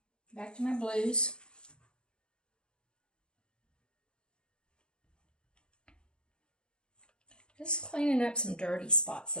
Back to my blues. Just cleaning up some dirty spots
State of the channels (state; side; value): late; right; 0.051 ms